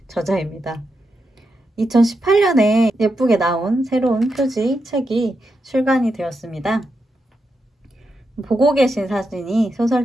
저자입니다. 2018년에 예쁘게 나온 새로운 표지 책이 출간이 되었습니다. 보고 계신 사진이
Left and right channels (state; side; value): normal; both; correlation 0.86